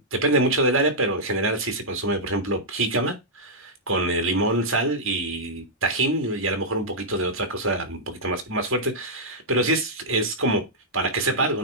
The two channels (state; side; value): normal; both; correlation -0.09